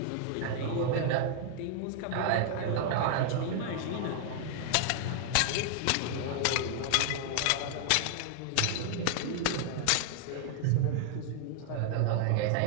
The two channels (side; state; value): both; different; correlation 0.00